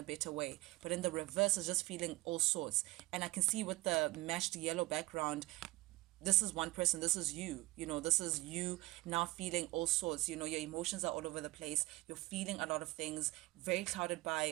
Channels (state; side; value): quieter; left; 20.9 dB